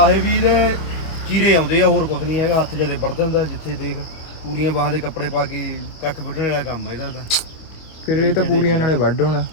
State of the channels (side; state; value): right; late; 25 ms